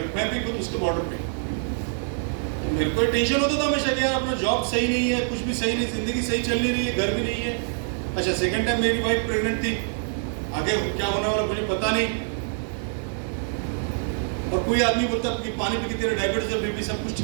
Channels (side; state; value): left; silent; digital silence